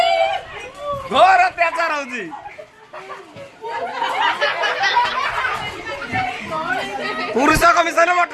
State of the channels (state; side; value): identical; both; correlation 1.00